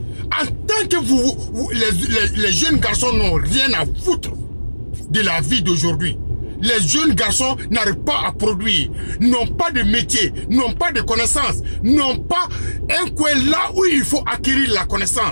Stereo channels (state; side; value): inverted; both; correlation -1.00